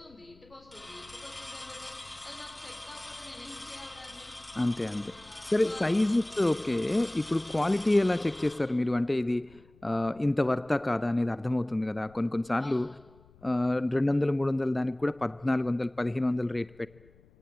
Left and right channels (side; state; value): left; noise; rumble, 27 dB below the sound